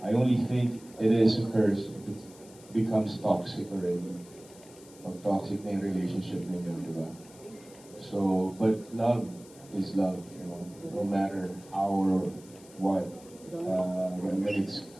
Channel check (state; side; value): noise; left; hiss, 22 dB below the sound